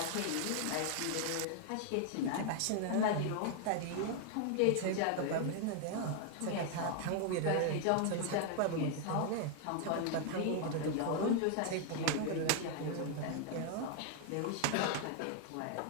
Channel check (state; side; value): different; both; correlation 0.00